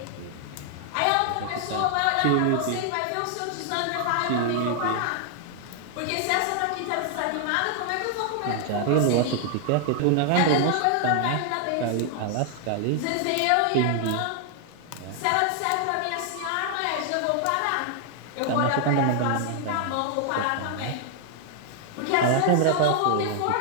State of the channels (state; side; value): different; both; correlation 0.00